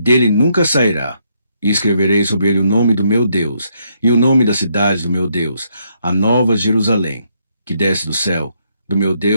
nunca sairá. E escreverei sobre ele o nome do meu Deus, e o nome da cidade do meu Deus, a nova Jerusalém, que desce do céu, do meu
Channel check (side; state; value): both; inverted; correlation -0.75